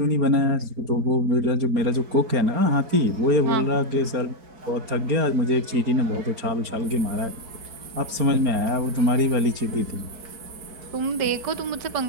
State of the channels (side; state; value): left; late; 4.3 ms